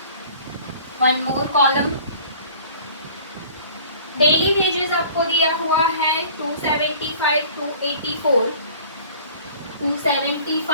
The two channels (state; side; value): inverted; both; correlation -0.48